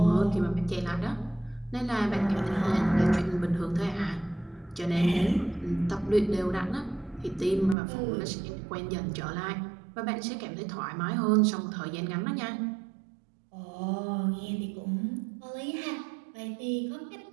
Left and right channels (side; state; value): left; drops out; at 7.8 s